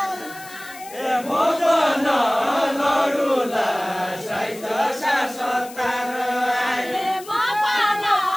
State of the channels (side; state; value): left; noise; hiss, 17 dB below the sound